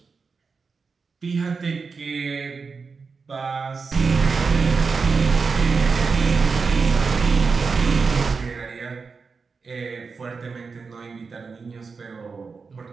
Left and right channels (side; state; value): left; quieter; 4.9 dB